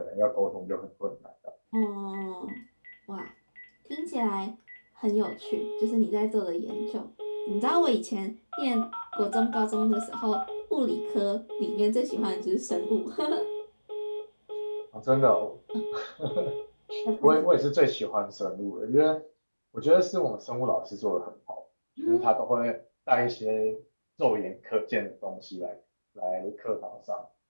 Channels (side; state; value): both; inverted; correlation -1.00